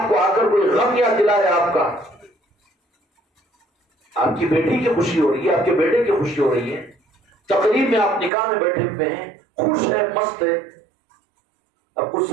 کو آ کر کوئی غم یاد دلائے آپ کا، آپ کی بیٹی کی خوشی ہو رہی ہے، آپ کے بیٹے کی خوشی ہو رہی ہے، تقریب میں آپ نکاح میں بیٹھے ہوئے ہیں، خوش ہے، مست ہے، اب اس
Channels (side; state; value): left; drops out; at 8.3 s